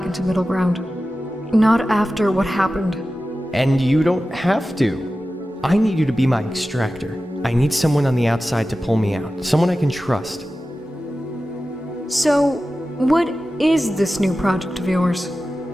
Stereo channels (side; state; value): both; normal; correlation 0.94